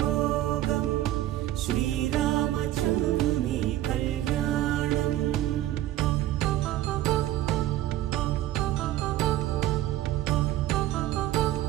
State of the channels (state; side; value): quieter; left; 14.1 dB